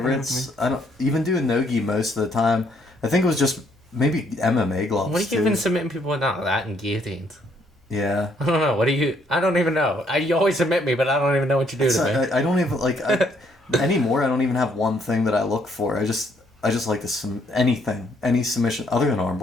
I don't even do nogi most of the time. I think it was just maybe MMA gloves. What are you too. even submitting people with now? That and guillotines. Yeah. I don't know. What do you? I don't even know. You always submit me, but I don't even know what you do to me. I don't even like anymore. I don't even have one thing that I look for. I just like to any submission other than arm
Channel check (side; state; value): both; normal; correlation 0.69